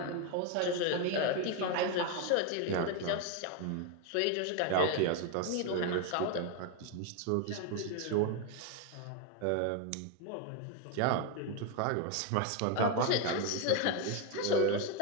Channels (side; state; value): both; different; correlation 0.01